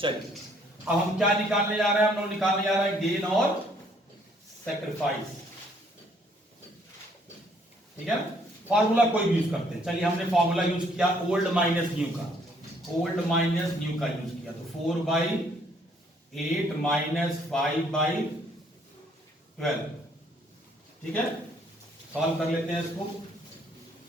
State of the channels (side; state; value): both; normal; correlation 0.65